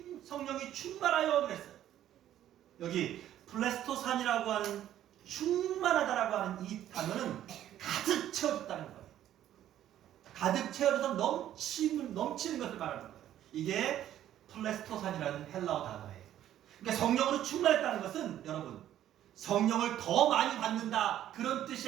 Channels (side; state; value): left; quieter; 11.8 dB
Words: 충만하여 그랬어요. 여기 플레스토산이라고 하는 충만하다라고 하는 이 단어는 가득 채워졌다는 거예요. 가득 채워져서 넘치는 것을 말하는 거예요. 이게 플레스토산이라는 헬라어 단어예요. 그러니까 성령으로 충만했다는 것은 여러분 성령을 더 많이 받는다 그런 뜻이